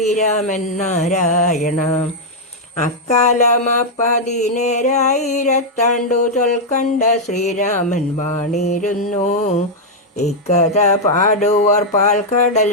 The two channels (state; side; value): normal; both; correlation -0.02